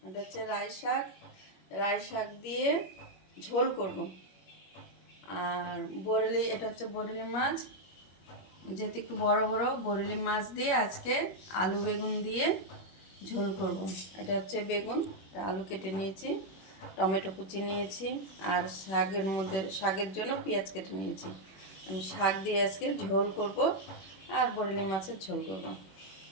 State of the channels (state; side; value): late; right; 21 ms